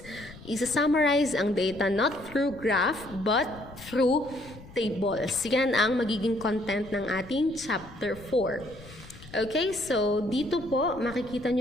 Isa-summarize ang data not through graph but through tables. Yan ang magiging content ng ating chapter 4. Okay, so dito po makikita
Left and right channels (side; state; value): left; noise; rumble, 18 dB below the sound